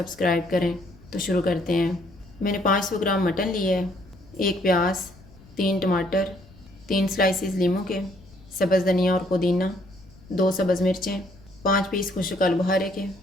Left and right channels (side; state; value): left; noise; rumble, 24 dB below the sound